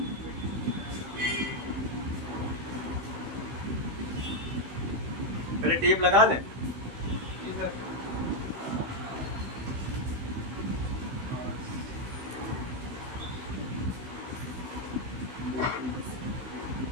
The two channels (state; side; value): late; left; 16 ms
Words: पहले टेप लगा लें।